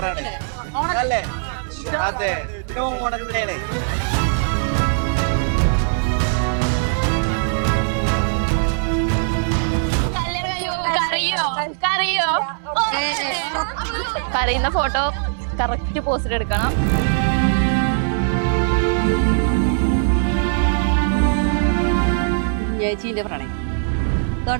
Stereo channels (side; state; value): left; silent; digital silence